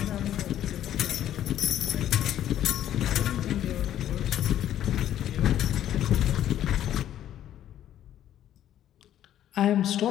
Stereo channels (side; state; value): right; quieter; 11.5 dB